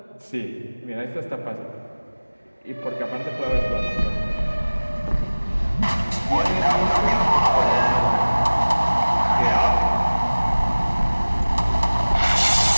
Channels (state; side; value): inverted; both; correlation -1.00